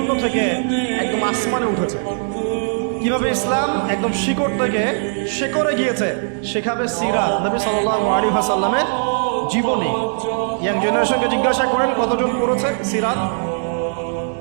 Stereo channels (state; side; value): silent; left; digital silence